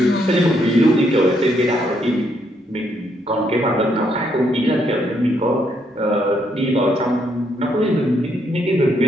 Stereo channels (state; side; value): normal; both; correlation 0.74